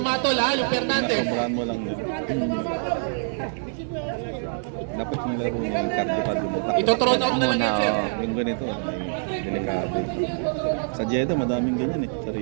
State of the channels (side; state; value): left; silent; 62 dB below the other